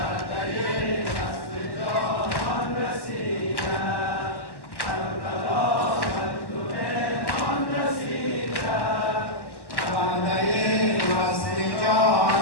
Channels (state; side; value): late; right; 1.1 ms